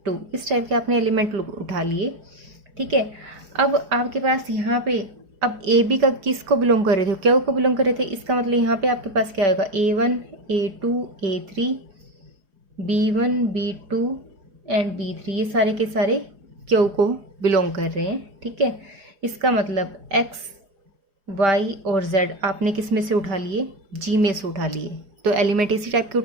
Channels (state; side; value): late; left; 4.8 ms